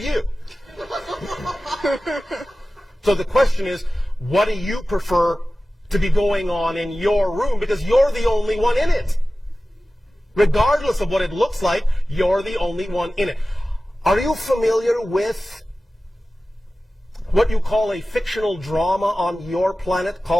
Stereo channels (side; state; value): both; normal; correlation 0.96